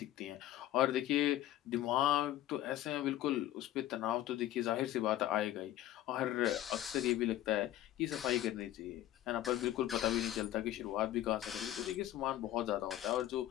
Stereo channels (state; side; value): quieter; right; 13.4 dB